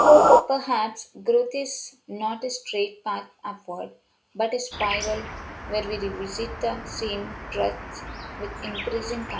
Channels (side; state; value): both; identical; correlation 1.00